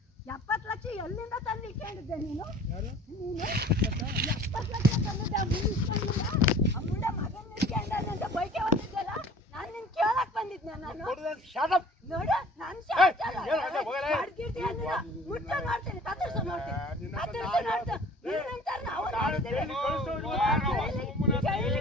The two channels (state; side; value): normal; both; correlation 0.47